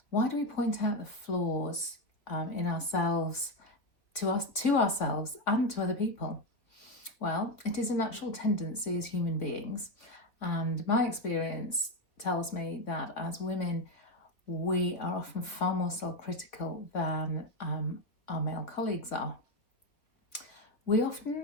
Why do we point out the flaws in ourselves to ourselves and to other people? Well, it is a natural tendency as human beings, and my experience tells me that as women, we are often far more self-critical than our male colleagues are. We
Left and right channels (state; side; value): late; right; 3.3 ms